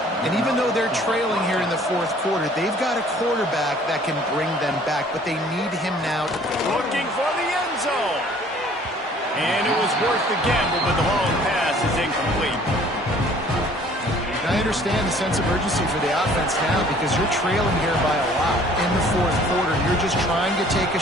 And even though they're trailing here in the fourth quarter, they've got a quarterback that can bring them back, but they need him now. Looking for the end zone. And it was worth the gamble, but the long pass is incomplete. I understand the sense of urgency for the offense now because you're trailing here by a lot in the fourth quarter. You're just trying to take a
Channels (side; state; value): both; normal; correlation 0.55